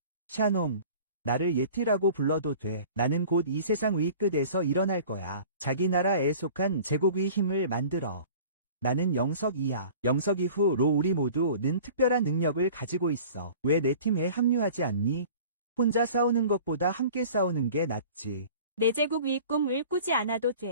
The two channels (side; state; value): both; inverted; correlation -0.44